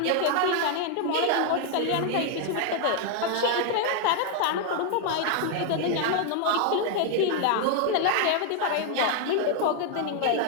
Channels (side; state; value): both; different; correlation 0.00